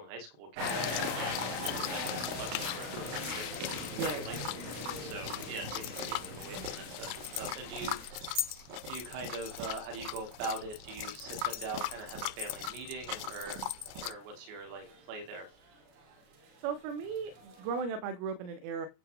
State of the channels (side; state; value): left; late; 33 ms